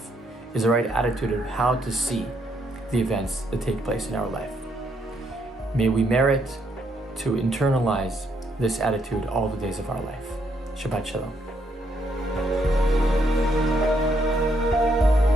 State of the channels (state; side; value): normal; both; correlation 0.74